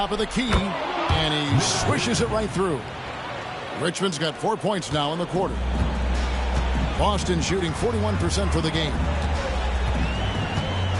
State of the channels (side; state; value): both; identical; correlation 1.00